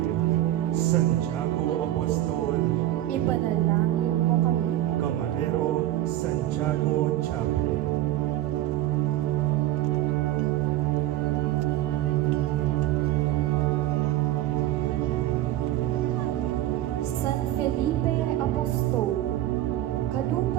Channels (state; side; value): quieter; left; 14.1 dB